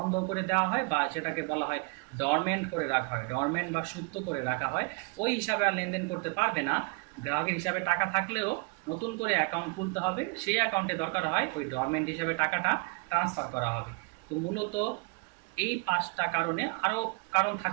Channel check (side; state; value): left; quieter; 30.7 dB